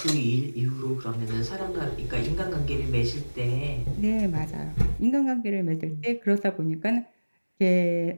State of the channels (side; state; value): both; inverted; correlation -1.00